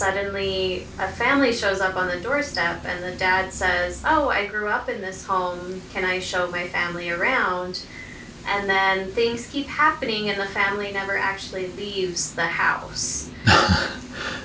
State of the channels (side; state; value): both; identical; correlation 1.00